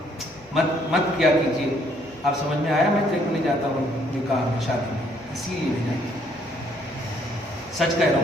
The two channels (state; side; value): normal; both; correlation 0.66